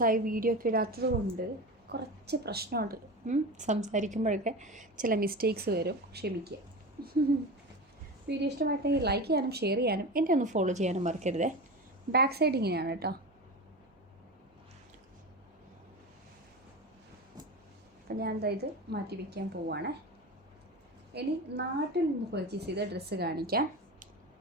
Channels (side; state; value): both; normal; correlation 0.27